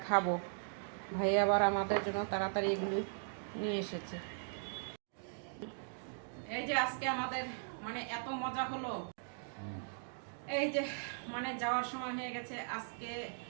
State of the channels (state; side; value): silent; left; digital silence